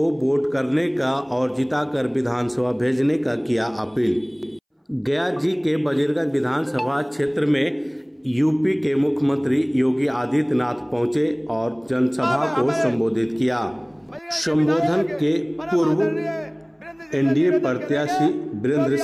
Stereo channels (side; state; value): both; identical; correlation 1.00